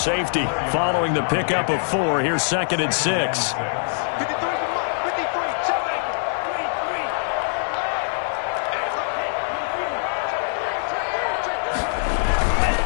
following the pickup of 4. Here's 2nd and 6.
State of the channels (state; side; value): silent; right; digital silence